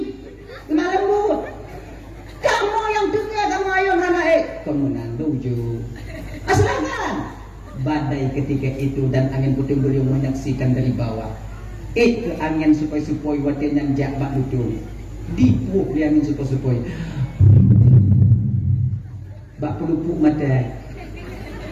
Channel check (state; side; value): identical; both; correlation 1.00